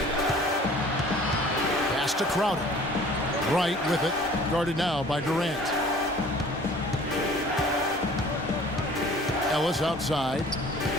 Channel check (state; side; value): noise; right; hum, 23 dB below the sound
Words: Pass to Crowder. Wright with it. Guarded now by Durant. Ellis outside.